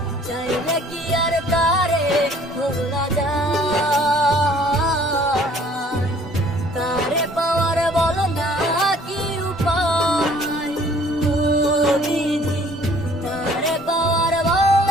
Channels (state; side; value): normal; both; correlation 0.56